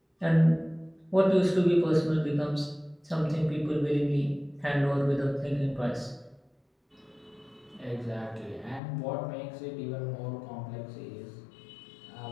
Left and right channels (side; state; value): right; drops out; at 8.8 s